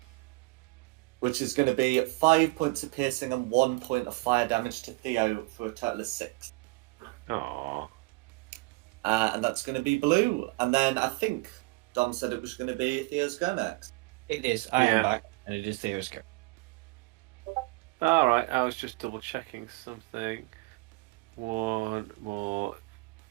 Which is going to be 5 points of piercing and 1 point of fire damage to Theo for a total of 6. Aww. And that's going to be Blue. And then I think Dom said it was going to be Theo's go next. It is. I am Yeah. back, and it is Theo's go. Alright, I was just double checking something. One more.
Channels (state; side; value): quieter; left; 24.5 dB